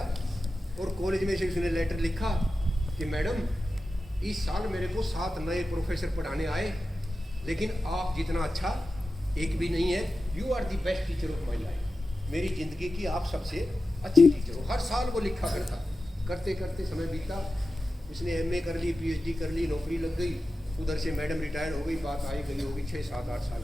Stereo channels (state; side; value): normal; both; correlation 0.93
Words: और कॉलेज में से उसने लेटर लिखा कि मैडम इस साल मेरे को 7 नए प्रोफेसर पढ़ाने आए, लेकिन आप जितना अच्छा एक भी नहीं है। You are the best teacher of my life, मेरी जिंदगी की आप सबसे अच्छी टीचर हो। हर साल वो लिखा करता, करते करते समय बीता, उसने MA कर ली, PhD कर ली, नौकरी लग गई, उधर से मैडम रिटायर हो गई, बात आई गई होगी 6 7 8 साल